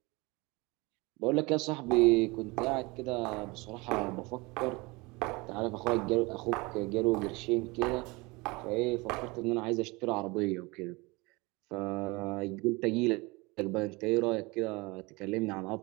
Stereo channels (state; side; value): quieter; left; 24.9 dB